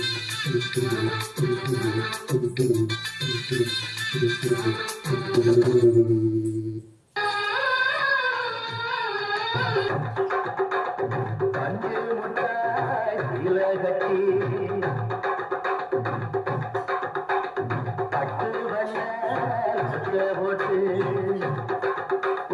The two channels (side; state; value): both; identical; correlation 1.00